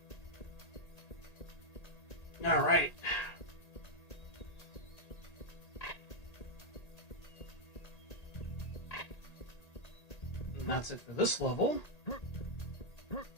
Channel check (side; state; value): right; late; 1.8 ms